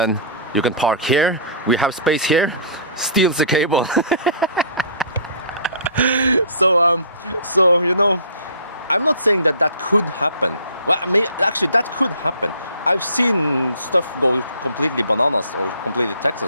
you can park here, we have space here, steals the cable. So you know, I'm not saying that could happen. Well, I mean, actually that could happen. I've seen stuff go completely bananas or completely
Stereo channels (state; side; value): inverted; both; correlation -0.46